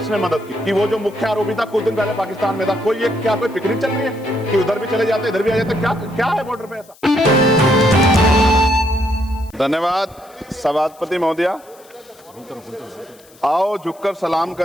मदद की? कि वो जो मुख्य आरोपी था कुछ दिन पहले पाकिस्तान में था, कोई पिकनिक चल रही है कि उधर भी चले जाते इधर भी आ जाते? क्या है बॉर्डर पे ऐसा? धन्यवाद सभापति महोदया। आओ झुककर सलाम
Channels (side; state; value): left; noise; hiss, 26 dB below the sound